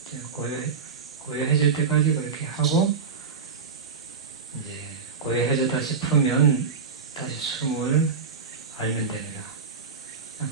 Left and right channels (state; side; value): quieter; left; 5.4 dB